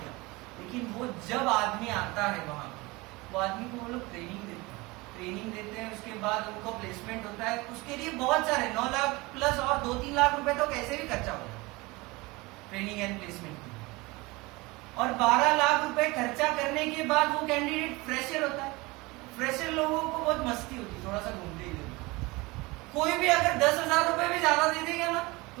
गया, लेकिन वो जब आदमी आता है वहां वो आदमी को वो लोग ट्रेनिंग देते हैं, उसके बाद उनको प्लेसमेंट होता है। उसके लिए बहुत सारे 9 लाख प्लस और 2-3 लाख रुपए तो कैसे भी खर्चा होगा ट्रेनिंग एंड प्लेसमेंट में। और 12 लाख रुपए खर्चा करने के बाद वो कैंडिडेट फ्रेशर होता है। फ्रेशर लोगों को बहुत मस्ती होती है, थोड़ा सा घूमते ही रहते। कोई भी अगर 10,000 रुपए भी ज्यादा दे देगा ना तो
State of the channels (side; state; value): left; quieter; 23.3 dB